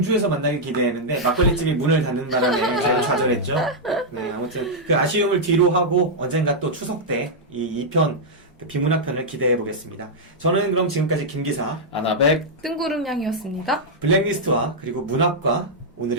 만나길 기대했는데 막걸리집이 문을 닫는 바람에 저희가 좌절했죠. 네, 아무튼 그 아쉬움을 뒤로 하고 언젠가 또 추석 때 이 2편 비문학편을 기대해 보겠습니다. 저는 그럼 지금까지 김기사, 아나백 뜬구름 양이었습니다. 블랙리스트와 그리고 문학과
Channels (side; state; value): both; normal; correlation -0.05